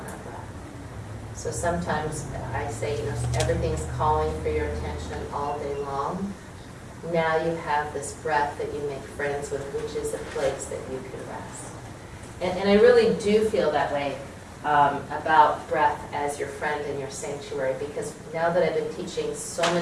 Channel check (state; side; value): identical; both; correlation 1.00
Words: our breath. So sometimes I say, everything's calling for your attention all day long. Now you have this breath that you make friends with, which is a place that you can rest. And I really do feel that way about breath as your friend in your sanctuary, because now that I've been teaching so